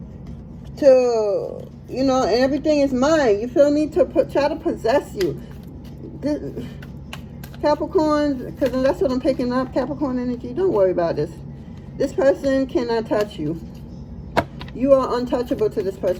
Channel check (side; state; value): both; identical; correlation 1.00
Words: to, you know, and everything is mine. You feel me? To try to possess you. Capricorn, because that's what I'm picking up. Capricorn energy. Don't worry about this. This person cannot touch you. You are untouchable to this